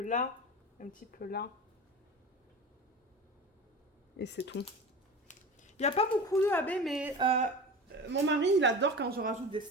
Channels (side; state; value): both; normal; correlation 0.32